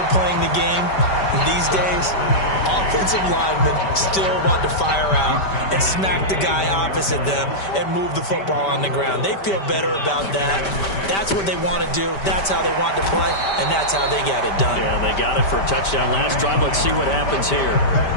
playing the game these days, offensive linemen still want to fire out and smack the guy opposite them and move the football on the ground. They feel better about that. That's what they want to do. That's how they want to play, and that's how they got it done. Yeah, they got it for a touchdown last drive. Let's see what happens here.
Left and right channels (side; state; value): right; late; 5.1 ms